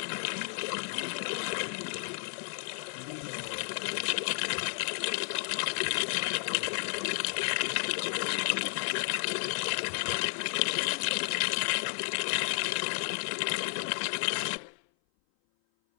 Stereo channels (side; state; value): right; silent; 56 dB below the other